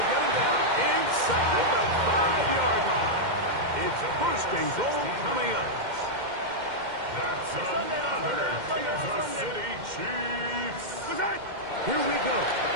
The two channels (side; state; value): left; late; 2.1 ms